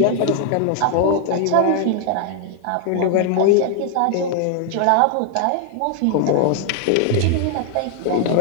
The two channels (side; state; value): both; different; correlation 0.00